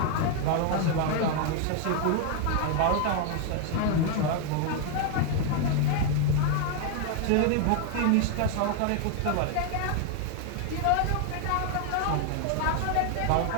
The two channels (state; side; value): different; both; correlation 0.00